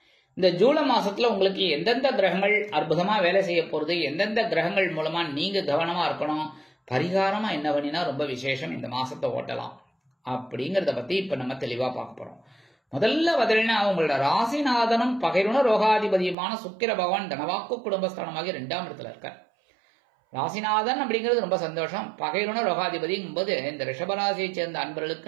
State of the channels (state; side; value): drops out; left; at 16.4 s